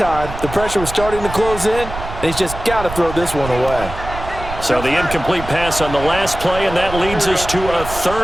the pressure was starting to close in, and he's just got to throw this one away. So the incomplete pass on the last play, and that leads us to a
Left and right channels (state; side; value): noise; right; rumble, 10 dB below the sound